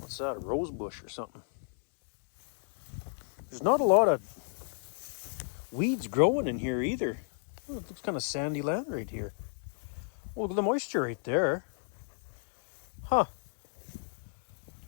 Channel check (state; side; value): silent; right; digital silence